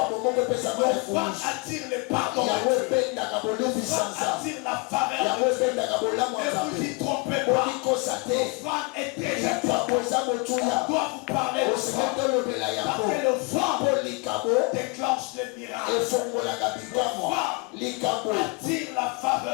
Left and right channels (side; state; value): right; quieter; 28.9 dB